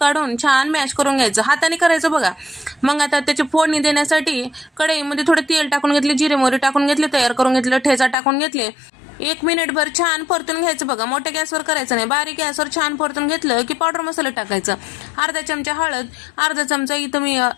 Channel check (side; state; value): right; drops out; at 8.2 s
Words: छान मॅश करून घ्यायचं, हाताने करायचं बघा. मग आता त्याची फोडणी देण्यासाठी कढईमध्ये थोडं तेल टाकून घेतले, जिरे मोहरी टाकून घेतले, तयार करून घेतलं, ठेचा टाकून घेतले. 1 मिनिटभर छान परतून घ्यायचं बघा. मोठ्या गॅसवर करायचं नाही, बारीक गॅसवर छान परतून घेतलं की पावडर मसाला टाकायचं. अर्धा चमचा हळद, अर्धा चमचा इथं मी